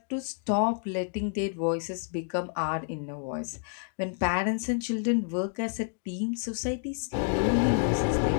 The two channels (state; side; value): silent; right; digital silence